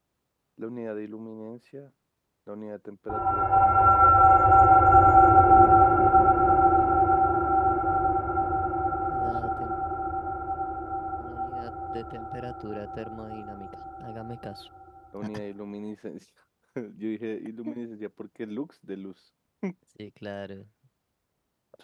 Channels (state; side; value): identical; both; correlation 1.00